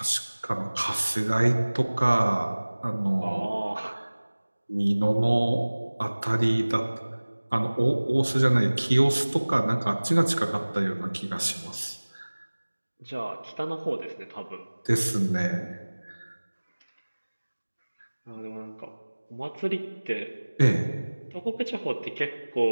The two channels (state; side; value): inverted; both; correlation -1.00